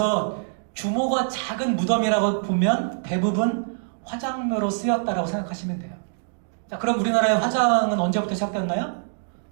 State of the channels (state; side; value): silent; left; digital silence